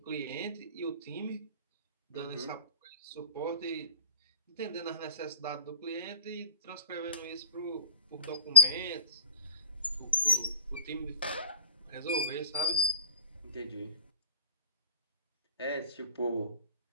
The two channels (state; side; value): inverted; both; correlation -0.44